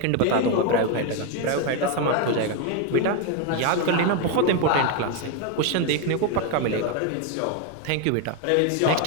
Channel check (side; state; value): both; different; correlation 0.02